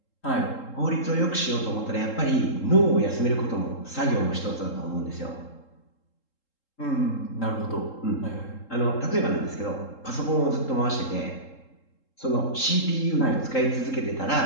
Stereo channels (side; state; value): right; late; 3.7 ms